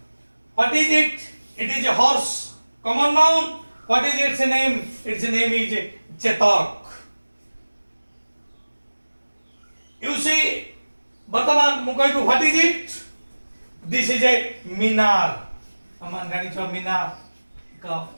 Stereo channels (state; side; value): inverted; both; correlation -1.00